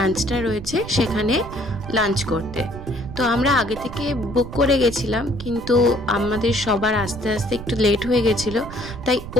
রয়েছে সেখানে লাঞ্চ করতে। তো আমরা আগে থেকে বুক করে গেছিলাম, কিন্তু আমাদের সবার আস্তে আস্তে একটু লেট হয়ে গেছিলো, তাই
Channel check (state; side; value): noise; right; rumble, 12 dB below the sound